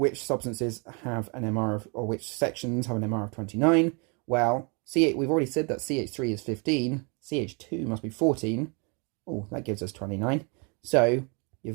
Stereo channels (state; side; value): quieter; left; 33.3 dB